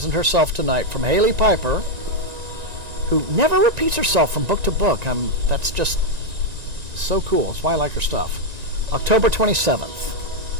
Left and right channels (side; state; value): left; late; 1.9 ms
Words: herself tonight, from Haley Piper, who never repeats herself from book to book. That's just so cool. That's why I like her stuff. October 27th.